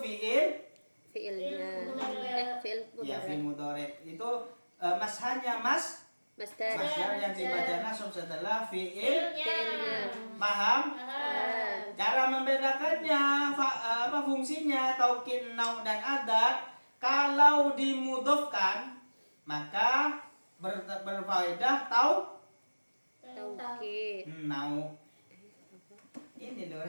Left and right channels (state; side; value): inverted; both; correlation -1.00